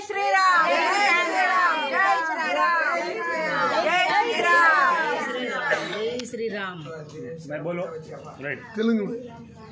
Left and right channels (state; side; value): identical; both; correlation 1.00